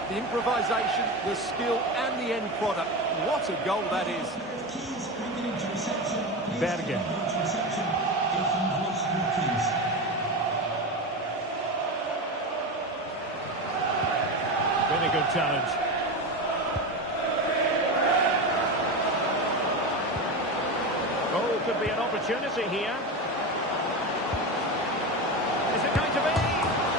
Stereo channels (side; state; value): both; normal; correlation 0.20